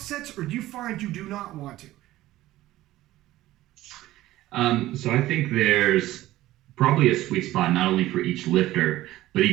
or do you find you do not want to? So I think there's probably a sweet spot, not only for each lifter, but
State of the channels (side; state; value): left; quieter; 15.9 dB